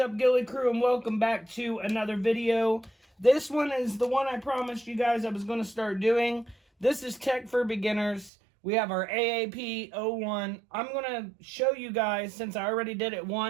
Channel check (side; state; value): left; drops out; at 8.3 s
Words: Gilly Crew, and welcome back to another video. This one is the one I promised you guys I was going to start doing. This is Tech for Beginners. We have our AAP-01. I'm going to show you guys, since I already did it